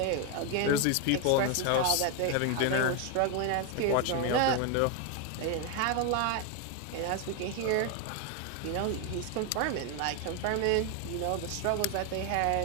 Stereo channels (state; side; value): different; both; correlation 0.01